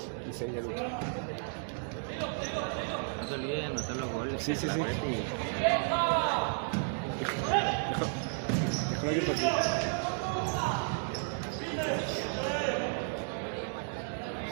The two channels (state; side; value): silent; left; 56 dB below the other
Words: Y 6 ya lucha. No te olvides de anotar los goles. Sí, sí, sí. Déjalo abierto aquí.